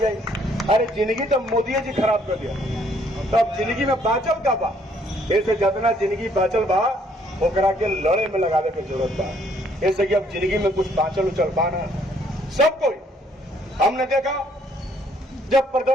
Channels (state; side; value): normal; both; correlation 0.65